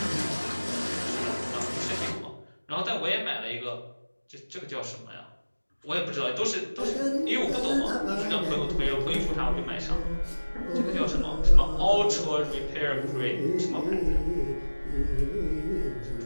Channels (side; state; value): both; inverted; correlation -1.00